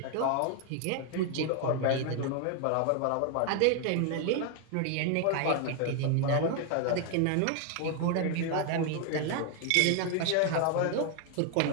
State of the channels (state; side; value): different; both; correlation 0.00